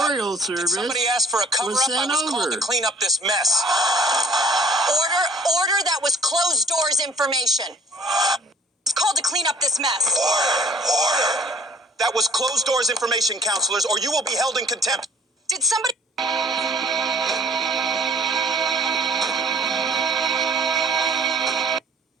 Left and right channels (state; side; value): normal; both; correlation 0.53